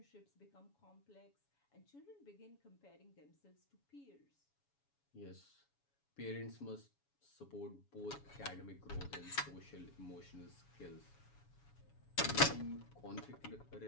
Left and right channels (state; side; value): late; right; 7.1 ms